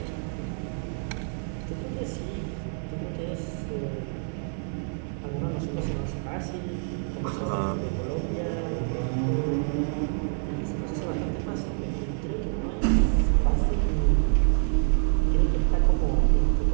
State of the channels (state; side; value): silent; left; 60 dB below the other